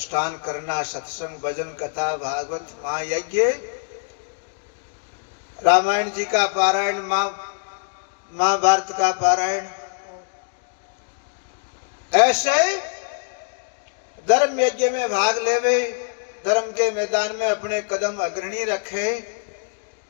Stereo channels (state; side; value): silent; right; 63 dB below the other